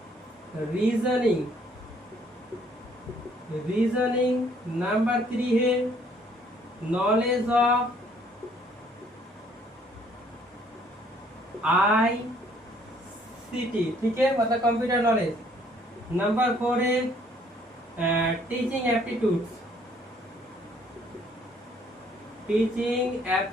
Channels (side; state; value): both; normal; correlation 0.62